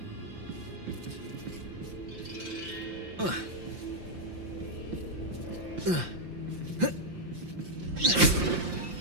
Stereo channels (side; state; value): left; late; 5.8 ms